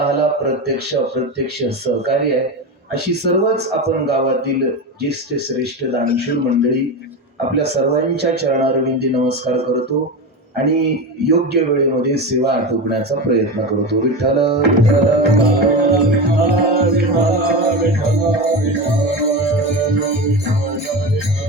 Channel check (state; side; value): normal; both; correlation 0.22